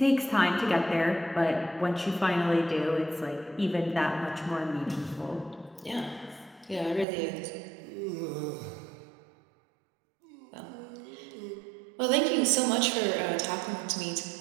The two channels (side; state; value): left; drops out; at 7.1 s